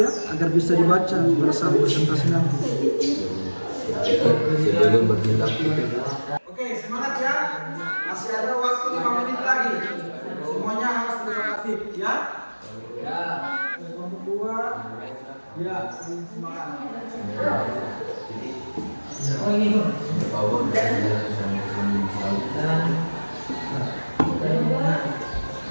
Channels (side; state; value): both; inverted; correlation -1.00